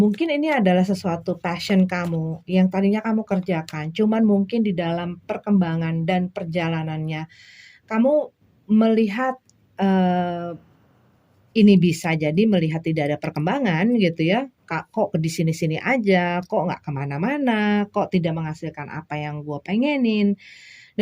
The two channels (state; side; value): identical; both; correlation 1.00